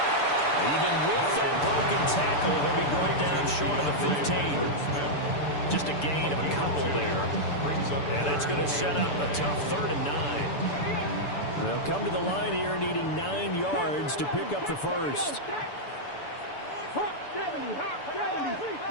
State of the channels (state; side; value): late; right; 6.9 ms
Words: Even with that broken tackle, he'll be brought down short of the 15. Just a gain of a couple there. And that's going to set up a tough 3rd and 9. They'll come to the line here needing 9 yards to pick up the first. Hawk 70. Hawk 70.